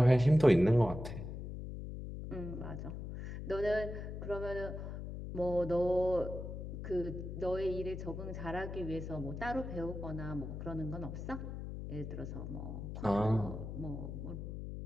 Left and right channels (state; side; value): noise; left; hum, 7 dB below the sound